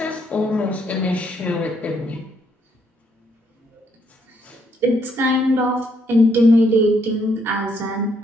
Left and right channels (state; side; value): normal; both; correlation 0.72